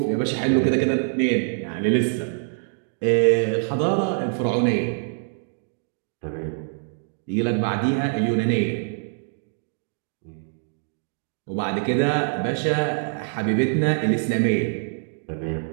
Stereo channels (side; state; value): left; silent; digital silence